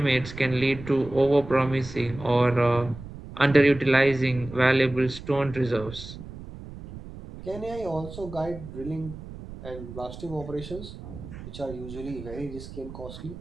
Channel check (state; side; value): noise; right; rumble, 13 dB below the sound